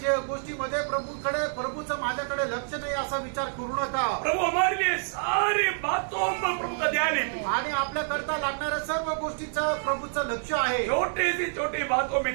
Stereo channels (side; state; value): left; silent; 60 dB below the other